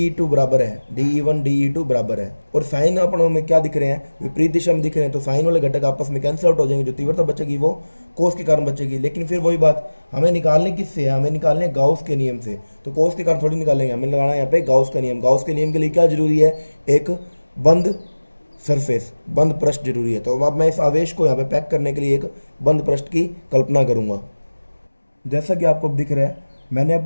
बराबर है, DE1 DE2 बराबर है, और साइन अपनों में क्या दिख रहे हैं, विपरीत दिशा में दिख रहे हैं। तो साइन वाले घटक आपस में कैंसिल आउट हो जाएंगे, जो तीव्रता बचेगी वो कोस के कारण बचेगी। लेकिन फिर वही बात, हमें निकालने किससे है, हमें निकालने गाउस के नियम से। तो कोस के कारण थोड़ी निकालेंगे, हमें लगाना है यहाँ पे गाउस का नियम। गाउस के नियम के लिए क्या जरूरी है, एक बंद सरफेस, बंद पृष्ठ जरूरी है। तो अब मैं इस आवेश को यहाँ पे पैक करने के लिए एक बंद पृष्ठ की कल्पना करूंगा। जैसा कि आपको दिख रहा है, मैंने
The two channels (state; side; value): inverted; both; correlation -1.00